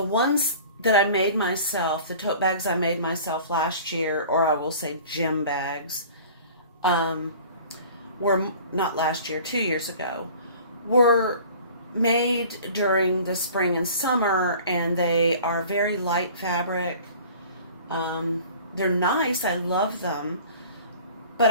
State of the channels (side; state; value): both; inverted; correlation -0.45